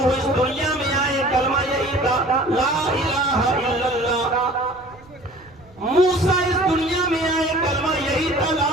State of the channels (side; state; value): right; noise; rumble, 26 dB below the sound